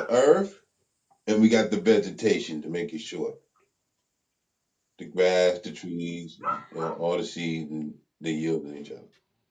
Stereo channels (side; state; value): both; identical; correlation 1.00